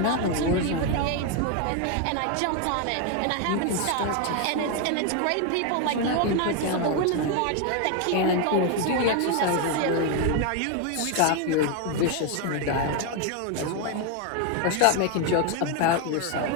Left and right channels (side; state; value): both; different; correlation 0.01